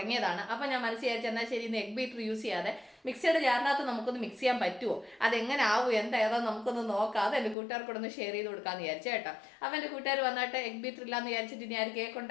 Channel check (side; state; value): right; drops out; at 7.6 s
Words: അപ്പോൾ ഞാൻ മനസ്സിൽ വിചാരിച്ചു എന്നാൽ ശരി, ഇന്ന് എഗ് ബീറ്റർ യൂസ് ചെയ്യാതെ മിക്സിയുടെ ജാറിനകത്ത് നമുക്കൊന്ന് മിക്സ് ചെയ്യാൻ പറ്റുമോ, അതെങ്ങനെ ആവും, ഏതാ നമുക്കൊന്ന് നോക്കാം, അത് എൻ്റെ കൂട്ടുകാർക്കൊന്ന് ഷെയർ ചെയ്ത് കൊടുക്കാമെന്ന് വിചാരിച്ചു കേട്ടോ. അപ്പോൾ എൻ്റെ കൂട്ടുകാർ വന്നിട്ട് എഗ് ബീറ്റർ ഇല്ലാന്ന് വിചാരിച്ചിട്ട് ഇനി ആരും കേക്ക്